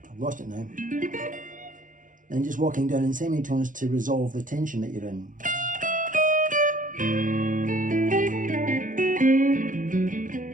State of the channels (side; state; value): left; late; 0.38 ms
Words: I've lost it now. Then just walking down in semitones to resolve the tension that you're in.